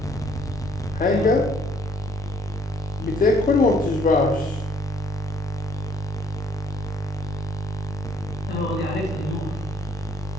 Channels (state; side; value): normal; both; correlation 0.63